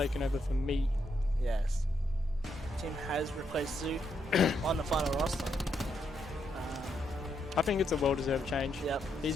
over for me. Yes. Tim has replaced Zoo on the final roster. I think it's a well-deserved change. Yep.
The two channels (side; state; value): both; normal; correlation 0.78